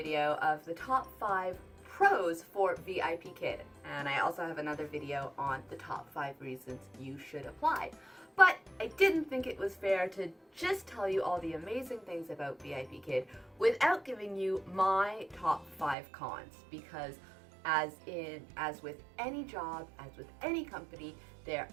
of the top 5 pros for VIPKID. And I also have another video on the top 5 reasons you should apply. But I didn't think it was fair to just tell you all the amazing things about VIPKID without giving you my top 5 cons, because as with any job, as with any company, there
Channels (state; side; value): drops out; left; at 16.0 s